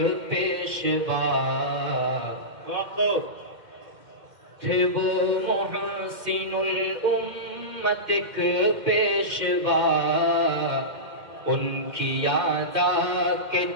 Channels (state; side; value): late; left; 2.1 ms